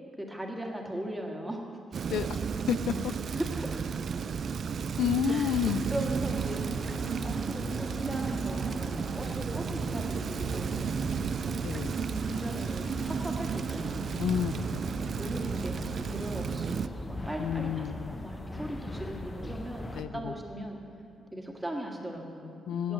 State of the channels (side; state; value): both; normal; correlation 0.71